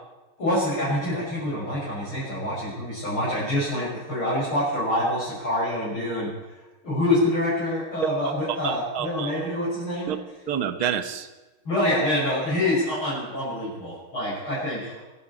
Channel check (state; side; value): late; right; 6.4 ms